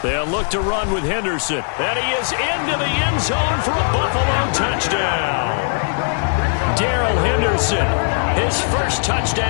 They'll look to run with Henderson. And he is into the end zone for a Buffalo touchdown. Darrell Henderson, his first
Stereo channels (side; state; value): right; silent; 55 dB below the other